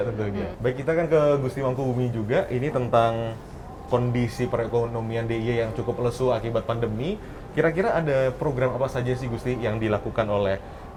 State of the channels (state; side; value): identical; both; correlation 1.00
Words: tentunya. Baik, kita kan ke Gusti Mangkubumi juga, ini tentang kondisi perekonomian DIY yang cukup lesu akibat pandemi. Kira-kira ada program apa saja sih Gusti yang dilakukan oleh